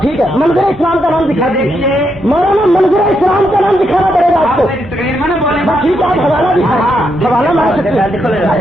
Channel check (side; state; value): both; normal; correlation 0.80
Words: ہے منظر اسلام کا نام دکھا دیجیے مولانا منظر اسلام کا نام دکھانا پڑے گا آپ کو بس ٹھیک ہے آپ حوالہ دکھائیں حوالہ مار سکتے